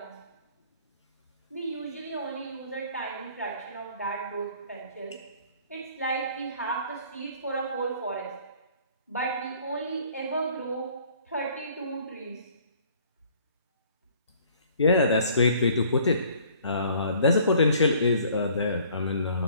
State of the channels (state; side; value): inverted; both; correlation -0.56